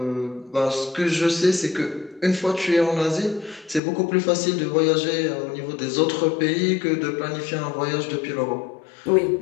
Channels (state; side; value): drops out; right; at 3.8 s